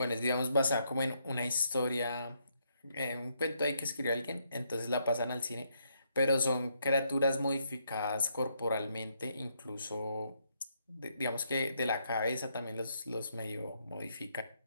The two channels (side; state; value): both; inverted; correlation -0.75